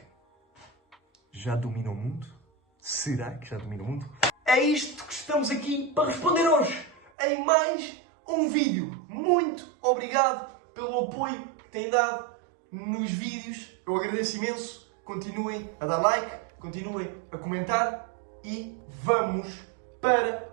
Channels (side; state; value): left; drops out; at 7.1 s